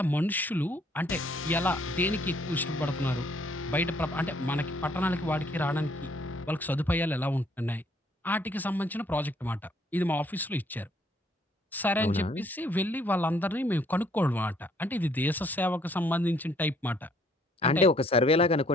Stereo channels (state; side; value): normal; both; correlation 0.65